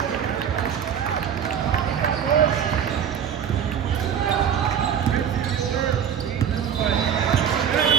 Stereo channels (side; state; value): left; quieter; 8.4 dB